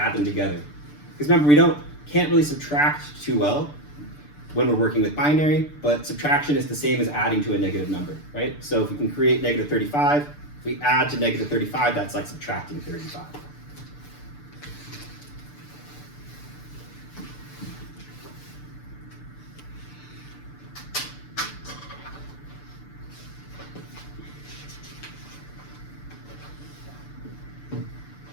them together. Because remember, we can't really subtract too well when we're working with binary, but subtraction is the same as adding to a negative number, right? So if we can create -35, if we add to -35, that's like subtracting 35.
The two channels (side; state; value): right; late; 6.8 ms